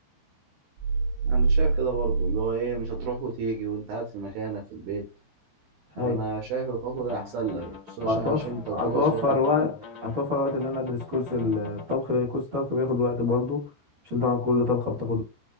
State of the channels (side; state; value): left; late; 13 ms